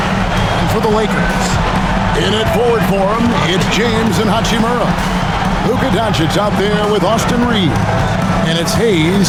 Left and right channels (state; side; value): identical; both; correlation 1.00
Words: for the Lakers, in at forward for him, it's James and Hachimura. Luka Doncic out there with Austin Reeves. And it's